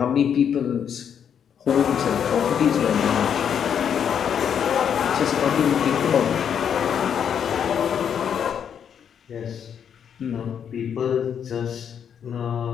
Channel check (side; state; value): right; quieter; 8.2 dB